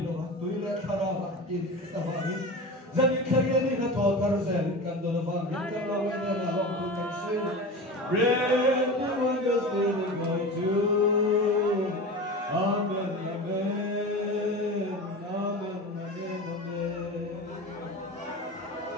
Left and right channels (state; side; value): normal; both; correlation 0.30